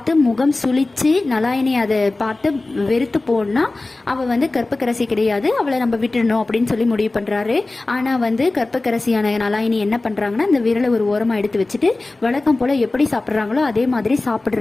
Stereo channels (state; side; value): quieter; right; 3.1 dB